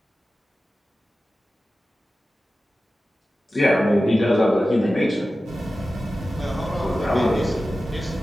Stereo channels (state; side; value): normal; both; correlation 0.95